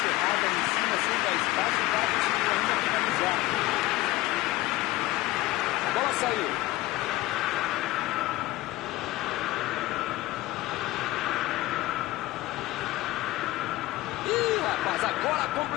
em cima, sem dar espaço, o cara conseguiu ainda finalizar. A bola saiu. Ih, rapaz, agora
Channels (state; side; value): quieter; right; 18.2 dB